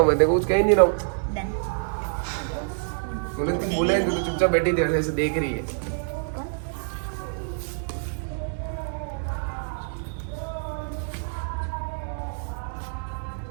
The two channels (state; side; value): silent; left; 61 dB below the other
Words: मैं, देखो कुछ कह ही नहीं रहा हूँ। डन। तूने कुछ बोला है, तू तो चुपचाप बैठी थी ऐसे देख रही है।